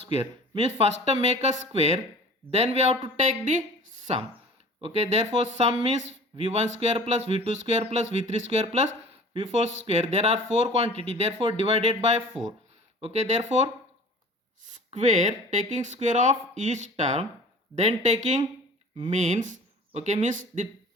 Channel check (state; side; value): normal; both; correlation 0.44